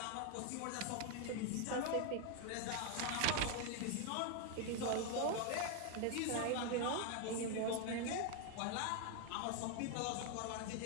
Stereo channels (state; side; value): different; both; correlation 0.01